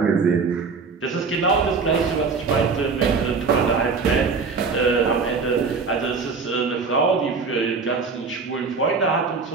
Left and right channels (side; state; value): left; quieter; 4.8 dB